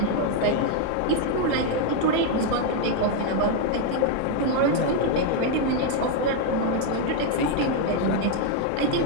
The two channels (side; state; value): both; different; correlation 0.01